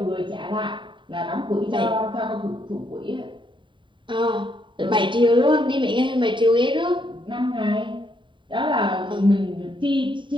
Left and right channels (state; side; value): late; left; 0.23 ms